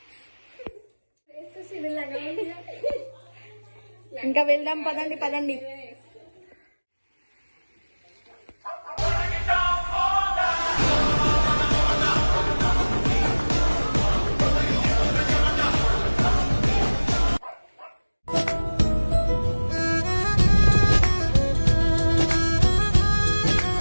ఇంకా వెళ్దాం, పదండి పదండి.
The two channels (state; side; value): inverted; both; correlation -1.00